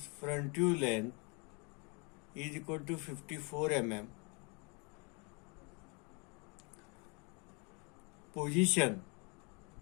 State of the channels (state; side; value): quieter; right; 32.4 dB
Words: front view length is equal to 54 mm. Position